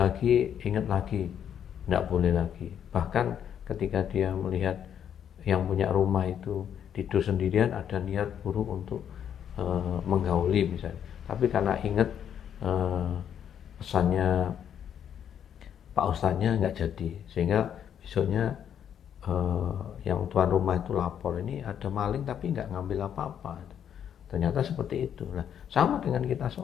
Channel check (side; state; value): right; quieter; 9.0 dB